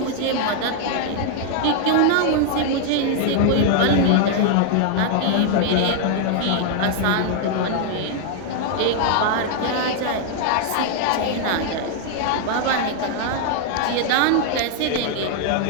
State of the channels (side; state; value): both; different; correlation 0.00